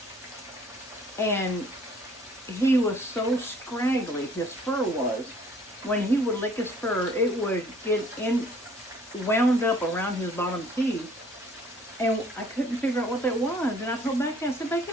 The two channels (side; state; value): both; normal; correlation 0.57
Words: And he was so scraggly, his fur was. When he would lick his fur, it would get wound up around his bottom teeth. And I couldn't figure out what that was. And I told Becky, I said, Becky,